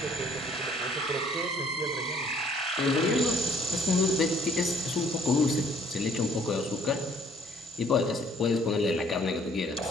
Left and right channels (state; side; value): normal; both; correlation 0.61